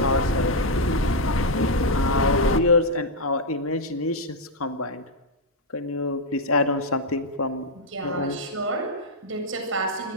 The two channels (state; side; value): normal; both; correlation -0.02